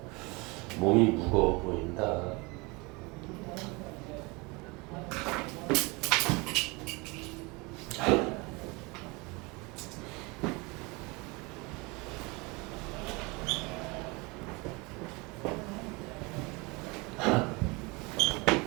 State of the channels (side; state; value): left; quieter; 26.5 dB